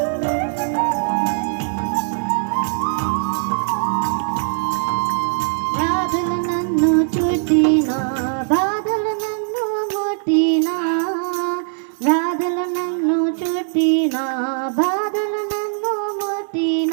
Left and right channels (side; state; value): left; silent; digital silence